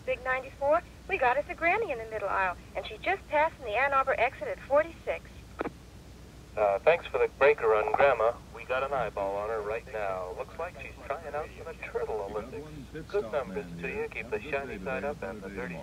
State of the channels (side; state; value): both; identical; correlation 1.00